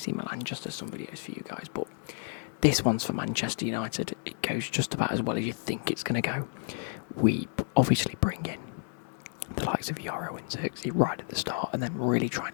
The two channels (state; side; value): silent; right; 57 dB below the other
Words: Milan, just as some videos for you guys, but this one's for Manchester United. It goes just about as well as you think it's going to go. We obviously bring in the likes of Yoro and Xerxes right at the start, and then really try